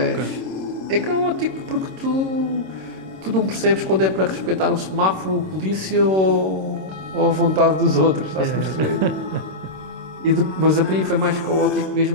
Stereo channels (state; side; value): late; left; 26 ms